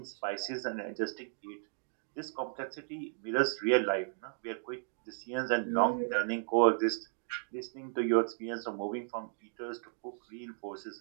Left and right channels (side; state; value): left; silent; digital silence